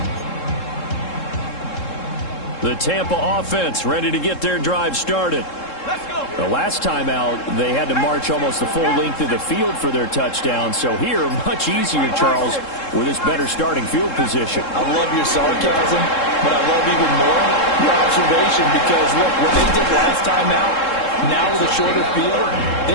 The Tampa offense ready to get their drive started. Let's go. The last time out, they had to march almost the full length of the field for their touchdown. So here, much easier, Charles, with this better starting field position. I love your sarcasm, but I love even more your observation because, look, what they did last time out, now with a shorter field, they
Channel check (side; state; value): right; late; 3.7 ms